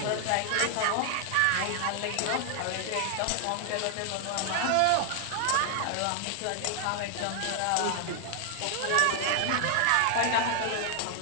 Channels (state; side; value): different; both; correlation 0.00